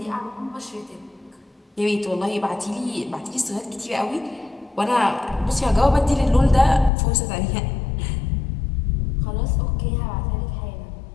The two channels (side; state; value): right; drops out; at 6.9 s